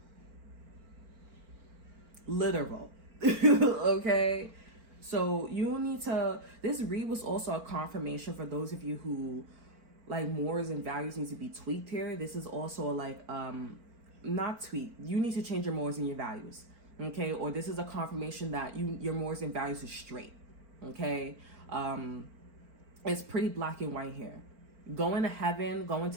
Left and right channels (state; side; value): late; left; 4.4 ms